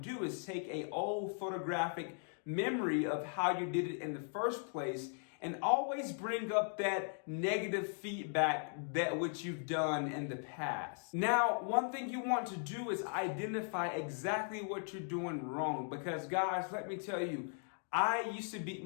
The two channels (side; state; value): right; silent; 52 dB below the other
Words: is take a old photographic memory of how you did it in the first place and always bring up that negative feedback that which you've done in the past. Now, one thing you want to do is identify exactly what you're doing wrong, because guys, let me tell you, I used to beat